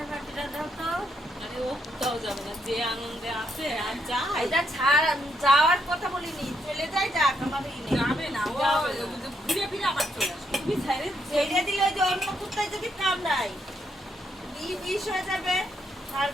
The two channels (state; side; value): normal; both; correlation 0.76